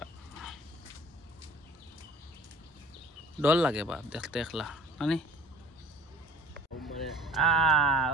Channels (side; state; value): both; normal; correlation 0.47